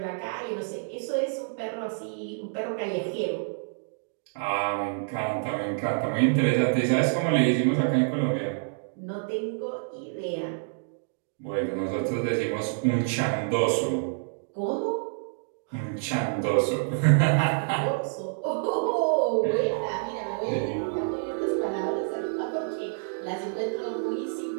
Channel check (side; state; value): left; silent; digital silence